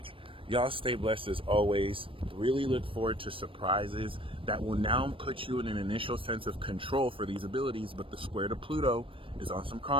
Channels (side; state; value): left; late; 0.25 ms